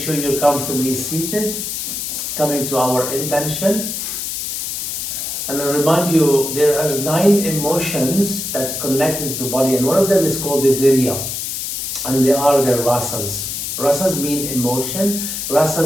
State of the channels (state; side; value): noise; left; hiss, 4 dB below the sound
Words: you're comfortably seated, coming to our intention. And I remind you, there are 9 emotions that connect into the body, and one of them is called the Virya, and they are the rasas. Rasas mean emotion,